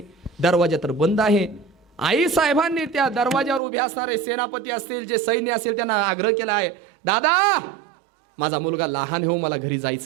दरवाजा तर बंद आहे. आई साहेबांनी त्या दरवाजावर उभे असणारे सेनापती असतील, जे सैन्य असेल, त्यांना आग्रह केला आहे, दादा माझा मुलगा लहान हो, मला घरी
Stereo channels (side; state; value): left; drops out; at 3.6 s